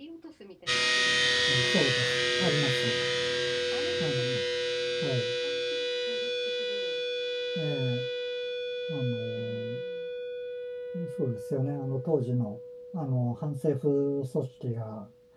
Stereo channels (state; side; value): identical; both; correlation 1.00